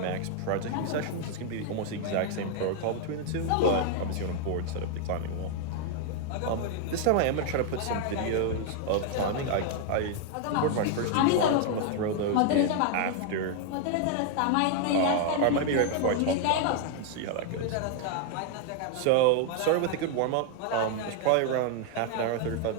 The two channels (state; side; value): different; both; correlation 0.00